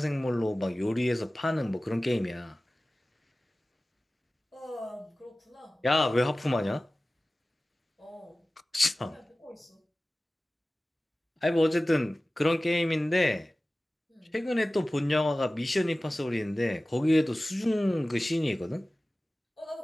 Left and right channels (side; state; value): both; normal; correlation 0.97